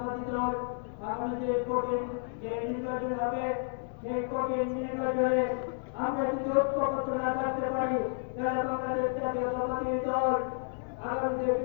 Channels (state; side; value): silent; right; 57 dB below the other